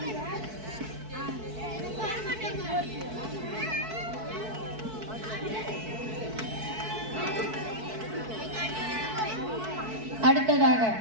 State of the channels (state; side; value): late; left; 4.6 ms